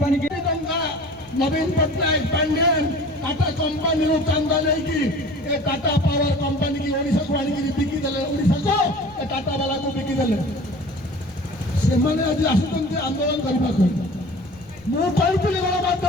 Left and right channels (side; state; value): left; noise; rumble, 24 dB below the sound